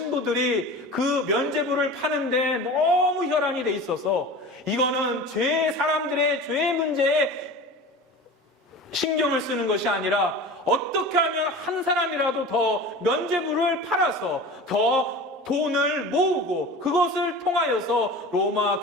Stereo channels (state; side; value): normal; both; correlation 0.35